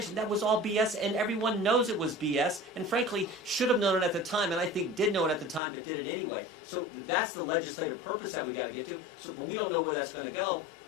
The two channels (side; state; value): right; drops out; at 5.6 s